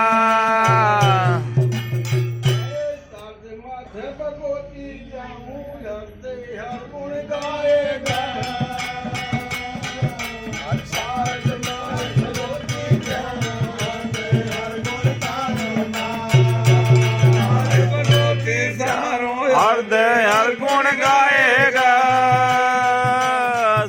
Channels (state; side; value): identical; both; correlation 1.00